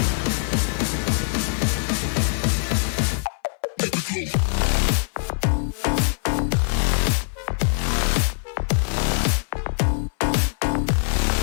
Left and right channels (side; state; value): right; silent; 60 dB below the other